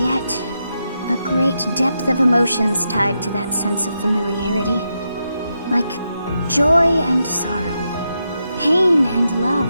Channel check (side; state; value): both; inverted; correlation -0.85